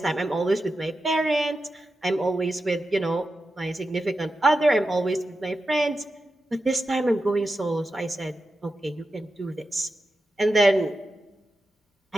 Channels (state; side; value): normal; both; correlation 0.90